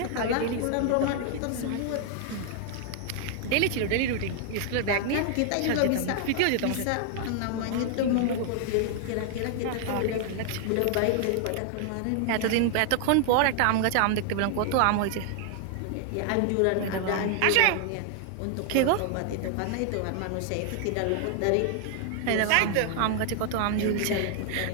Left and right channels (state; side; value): different; both; correlation 0.00